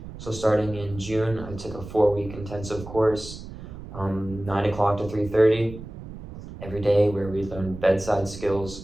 So starting in June, I took a 4-week intensive course, 9 o'clock to 3:30 every day, where we learned bedside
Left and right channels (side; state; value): right; noise; rumble, 13 dB below the sound